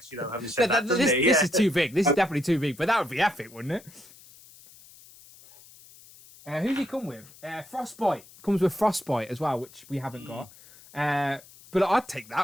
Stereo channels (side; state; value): left; noise; hiss, 23 dB below the sound